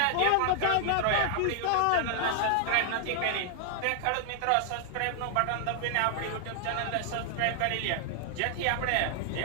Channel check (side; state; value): both; different; correlation 0.00